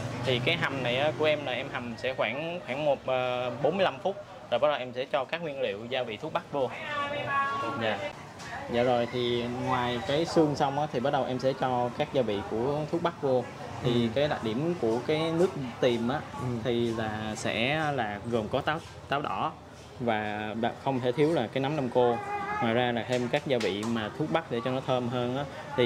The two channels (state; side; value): identical; both; correlation 1.00